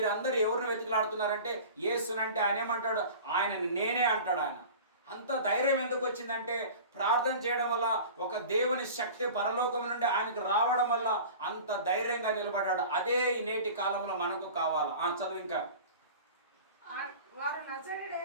ఎవరిని వెతుకులాడుతున్నారంటే యేసునంటే ఆయన ఏమంటాడు, ఆయనని నేనే అంటాడు. ఆయన అంత ధైర్యం ఎందుకు వచ్చిందంటే ప్రార్థన చేయడం వల్ల, ఒక దేవుని శక్తి పరలోకం నుండి ఆయనకు రావడం వల్ల అంత ధైర్యంగా నిలబడ్డాడు. అదే ఈ నేటి కాలంలో మనకు కావాలా. చదువు ఇంకా. వారు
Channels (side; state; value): both; inverted; correlation -0.39